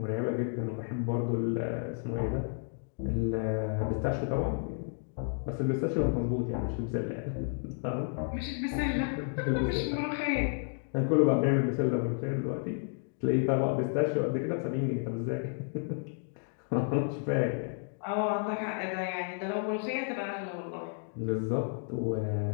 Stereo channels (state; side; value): silent; right; 57 dB below the other